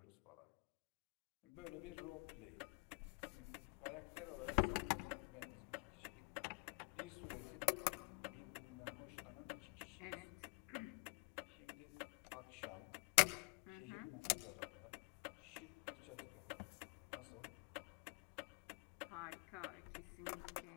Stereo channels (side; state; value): right; quieter; 32.8 dB